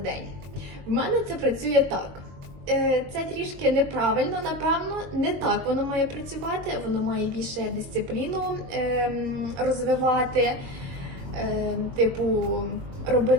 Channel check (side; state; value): left; late; 22 ms